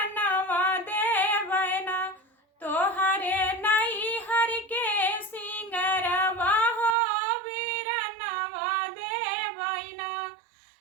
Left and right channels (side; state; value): left; drops out; at 7.0 s